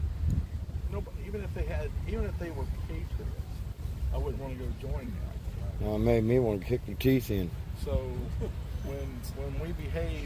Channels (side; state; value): both; identical; correlation 1.00